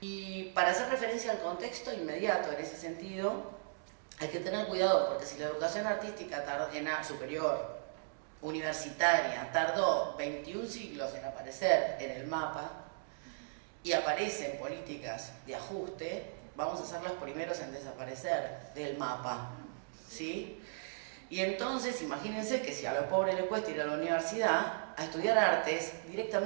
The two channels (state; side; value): silent; left; digital silence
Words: para hacer referencia al contexto inmediato en ese sentido, hay que tener cuidado porque si la educación artística superior, universitaria, tardó 21 siglos en aparecer en el mapa y aparecen políticas de ajuste, vamos a ser los primeros en desaparecer del mapa, ¿sí? Y entonces, imagínense que si a los pobres les cuesta ir a la universidad a estudiar artes,